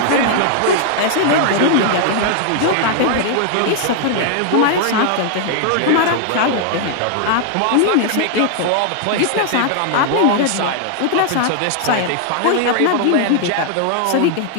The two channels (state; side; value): different; both; correlation 0.00